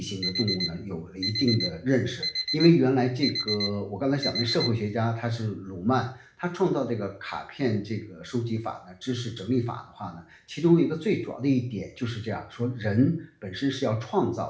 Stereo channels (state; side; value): identical; both; correlation 1.00